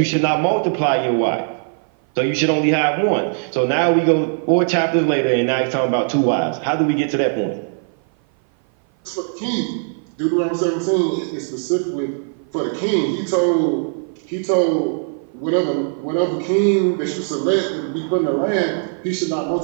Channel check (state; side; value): silent; left; 56 dB below the other